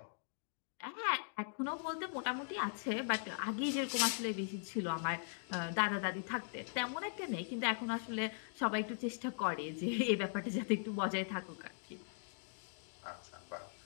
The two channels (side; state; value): right; silent; digital silence